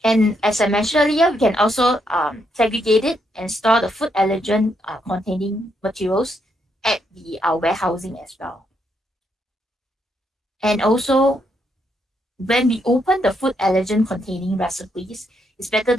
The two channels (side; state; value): both; normal; correlation 0.77